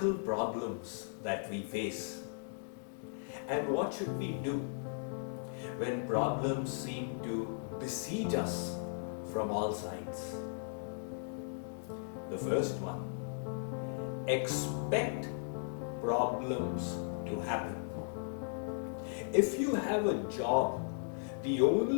problems that we face? And what should we do when problems seem to besiege us from all sides? The first one, expect problems to happen. If you have a job, the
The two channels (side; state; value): right; silent; digital silence